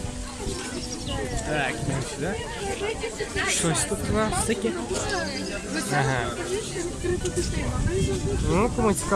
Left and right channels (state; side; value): identical; both; correlation 1.00